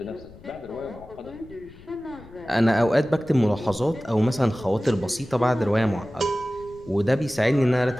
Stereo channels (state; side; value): noise; left; rumble, 20 dB below the sound